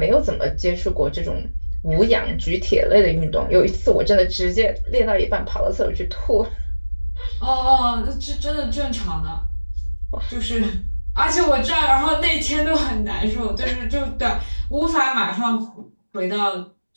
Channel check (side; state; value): both; inverted; correlation -1.00